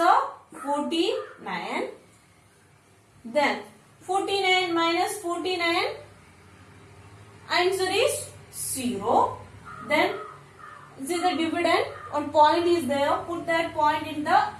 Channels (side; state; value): both; identical; correlation 1.00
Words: 49. Then 49 minus 49, answer is 0. Then see the dividend, one point is there, put that point in the